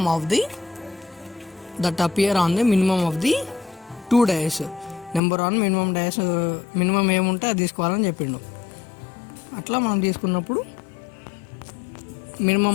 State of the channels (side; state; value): right; drops out; at 5.2 s